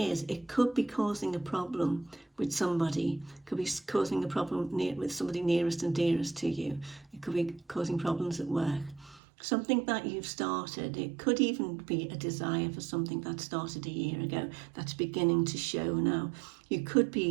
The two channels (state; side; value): drops out; left; at 9.2 s